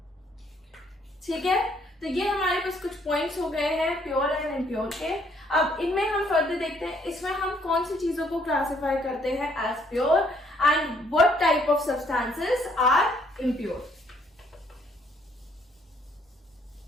ठीक है। तो ये हमारे पास कुछ पॉइंट्स हो गए हैं प्योर एंड इम्प्योर के। अब इनमें हम फर्दर देखते हैं इसमें हम कौन सी चीजों को क्लासिफाई करते हैं as pure and what type of substances are impure.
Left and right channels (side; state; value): both; normal; correlation 0.67